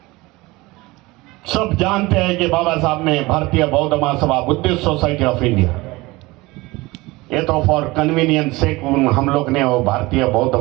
सब जानते हैं कि बाबा साहब ने भारतीय बौद्ध महासभा, बुद्धिस्ट सोसाइटी ऑफ इंडिया, ये तो फॉर कन्वीनियंस से हम लोग ने वो भारतीय बौद्ध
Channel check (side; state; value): left; quieter; 21.6 dB